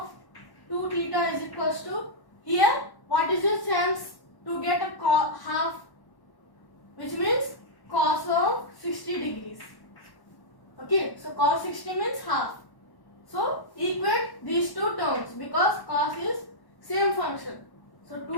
2 theta is equals to, here what is the chance to get a half, which means cos of 60 degrees. Okay, so cos 60 means half. So equate these two terms because cos is same function. So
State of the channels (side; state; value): right; late; 1.1 ms